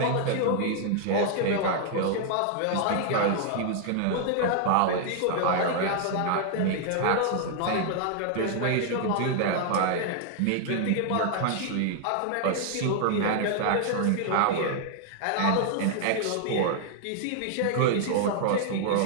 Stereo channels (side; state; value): both; different; correlation 0.00